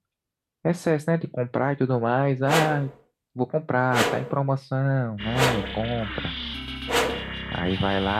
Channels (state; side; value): identical; both; correlation 1.00